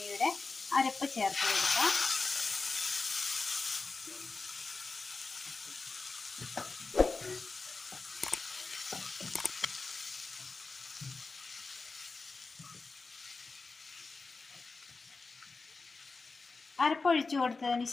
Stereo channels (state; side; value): quieter; right; 4.0 dB